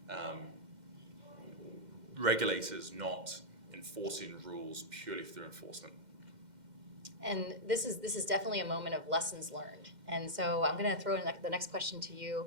regulators not enforcing rules purely through enforcement. And this is definitely a moment of lessons learned. And so I'm going to throw in the next question to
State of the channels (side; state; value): left; late; 2.1 ms